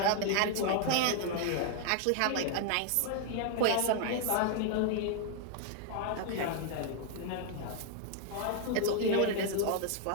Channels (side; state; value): both; different; correlation 0.00